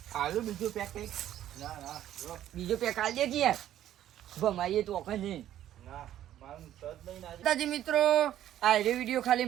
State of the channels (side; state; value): left; quieter; 12.0 dB